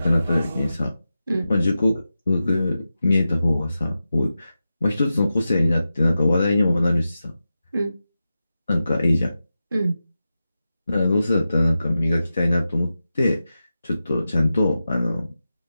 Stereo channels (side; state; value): both; inverted; correlation -0.92